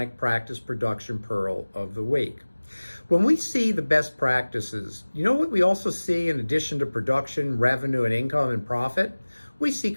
practice production pearl of the week. When we see the best practices, you know what we also see in addition to production, revenue, and income and profit? We see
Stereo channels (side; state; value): both; inverted; correlation -1.00